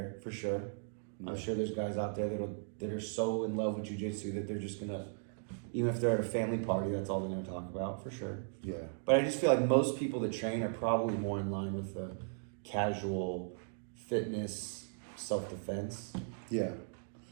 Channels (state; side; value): silent; left; digital silence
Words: for sure. I'm sure there's guys out there that are so in love with jiu-jitsu that they're just gonna, even if they're at a family party, that's all they're gonna talk about, for sure. But I just feel like most people that train are probably more in line with the casual fitness, self-defense